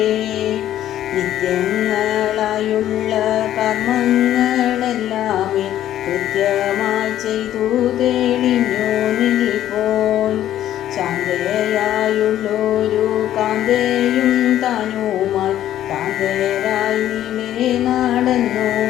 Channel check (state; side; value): quieter; right; 12.2 dB